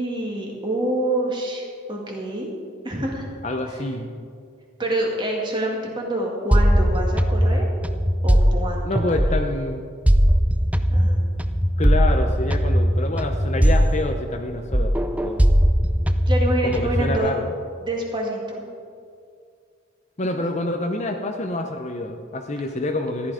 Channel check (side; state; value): both; normal; correlation 0.82